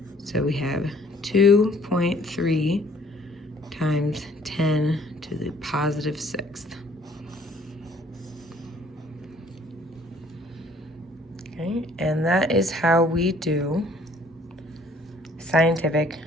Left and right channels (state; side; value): normal; both; correlation 0.59